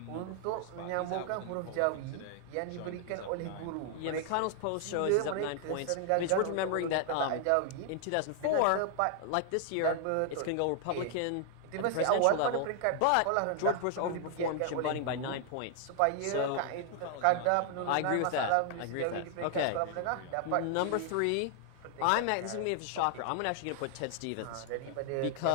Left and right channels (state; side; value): different; both; correlation 0.00